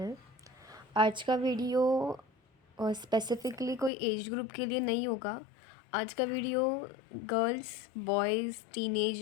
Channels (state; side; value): drops out; right; at 3.9 s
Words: आज का video specifically कोई एज ग्रुप के लिए नहीं होगा। आज का video girls, boys,